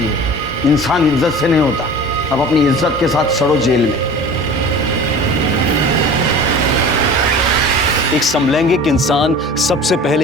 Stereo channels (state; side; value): normal; both; correlation 0.39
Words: है, इंसान इज्जत से नहीं होता। अब अपनी इज्जत के साथ सड़ो जेल में। एक समलैंगिक इंसान सबसे